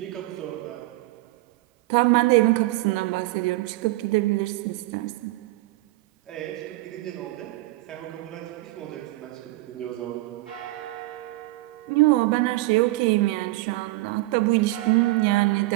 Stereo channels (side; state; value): left; quieter; 19.4 dB